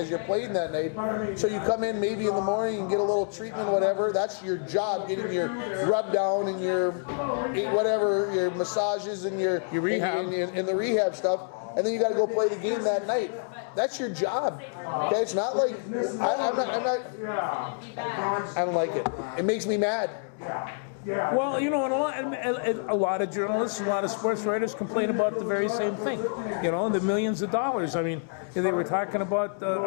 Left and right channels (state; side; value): silent; right; digital silence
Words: you're playing that night. So you come in maybe in the morning and get a little treatment, whatever. That's your job, getting your rub down and your whatever, your massages and your rehab and the rehab stuff. And then you got to go play the game that night. That's your job. Okay, it's not like I don't like it. It makes me mad. Well, you know, a lot of journalists, a lot of sports writers complain about the very same thing. You know, the millions of dollars. I mean, they were talking about